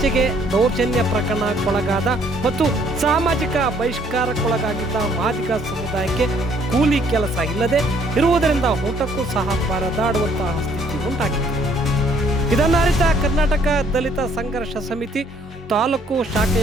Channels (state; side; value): normal; both; correlation 0.63